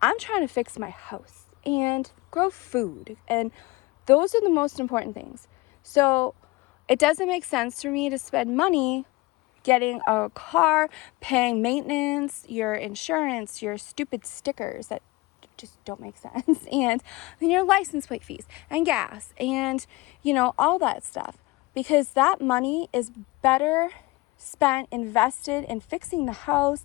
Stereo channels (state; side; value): quieter; right; 22.3 dB